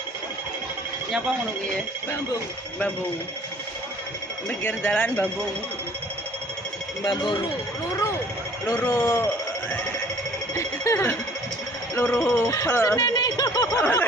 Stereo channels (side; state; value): both; normal; correlation 0.54